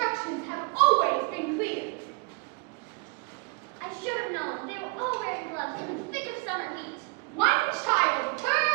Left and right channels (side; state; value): left; quieter; 32.1 dB